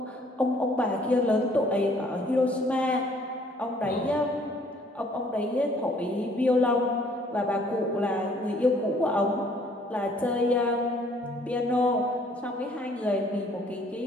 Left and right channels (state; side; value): normal; both; correlation 0.60